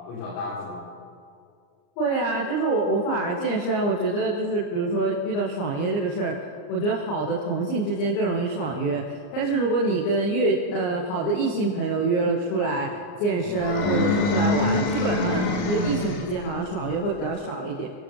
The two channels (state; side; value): late; right; 39 ms